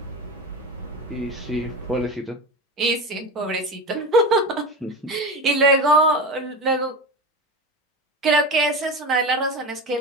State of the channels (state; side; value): normal; both; correlation 0.25